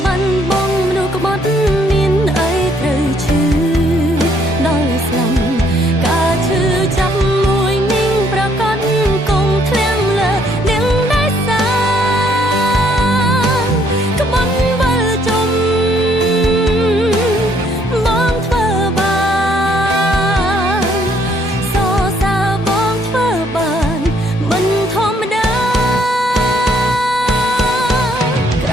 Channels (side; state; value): both; normal; correlation 0.67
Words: បានបងមនុស្សក្បត់មានអីត្រូវឈឺដល់ស្លាប់ការឈឺចាប់មួយនាងប្រកាសគង់ធ្លាំលើនាងដែលសាក្បត់វិលជុំបងធ្វើ